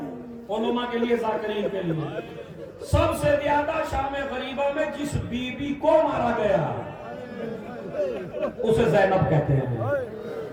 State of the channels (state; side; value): identical; both; correlation 1.00